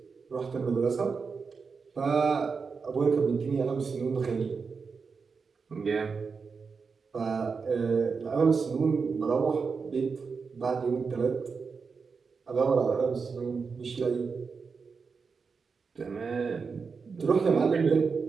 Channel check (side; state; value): left; quieter; 5.2 dB